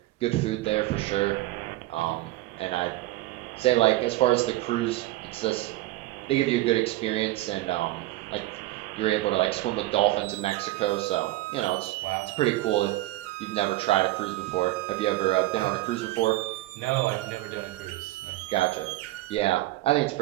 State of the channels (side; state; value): left; quieter; 17.4 dB